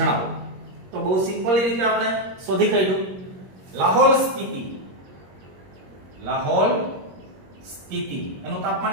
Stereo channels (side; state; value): left; late; 21 ms